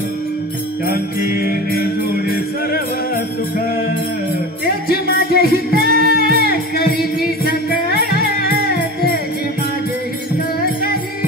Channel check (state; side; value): normal; both; correlation 0.32